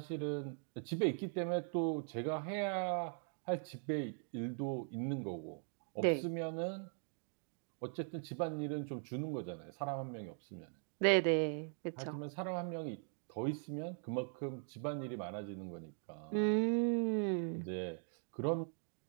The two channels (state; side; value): silent; left; 51 dB below the other